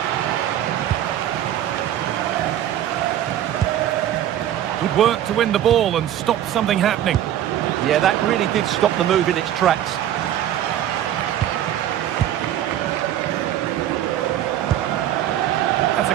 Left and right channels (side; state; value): left; quieter; 11.6 dB